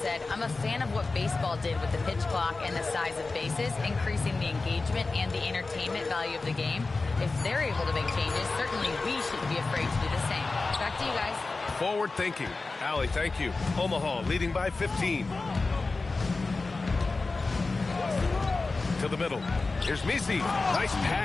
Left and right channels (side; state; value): right; quieter; 3.7 dB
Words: "I'm a fan of what baseball did with the pitch clock and the size of bases, increasing the engagement and the entertainment value of the game. If they're able to make changes, certainly we shouldn't be afraid to do the same." Back to you guys. Forward thinking. Allie, thank you. Omaha leading by 15. To the middle. Here's Misi. Nice